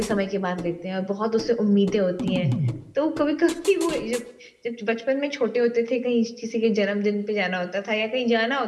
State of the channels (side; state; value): both; identical; correlation 1.00